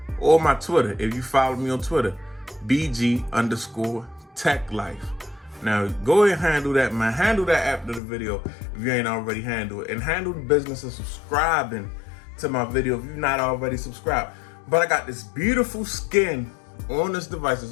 or my Twitter if you follow me on Twitter, BG_Tech Life. Now go ahead and handle that, man. Handle that after the video if you ain't already handled it, and handle the business of subscribing to my video if you're not already subscribed. But I got this beautiful skin on this device, this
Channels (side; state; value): right; drops out; at 8.0 s